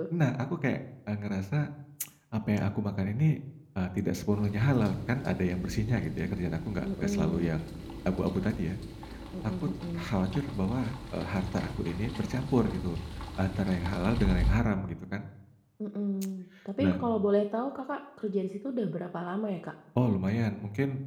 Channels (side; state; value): both; identical; correlation 1.00